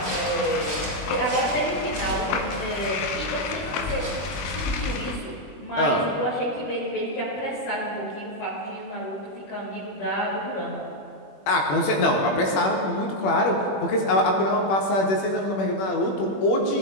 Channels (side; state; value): right; late; 21 ms